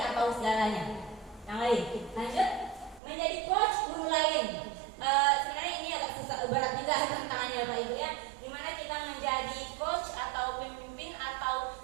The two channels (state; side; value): drops out; left; at 3.0 s